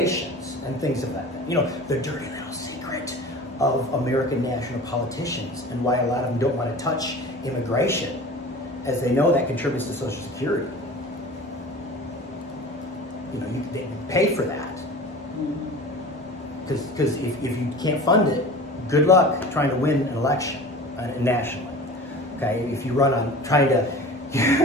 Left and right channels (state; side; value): normal; both; correlation 0.38